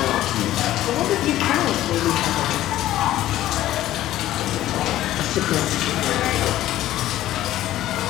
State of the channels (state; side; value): quieter; right; 14.0 dB